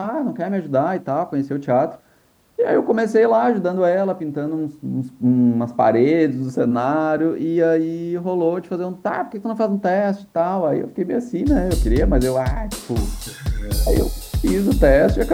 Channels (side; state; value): both; identical; correlation 1.00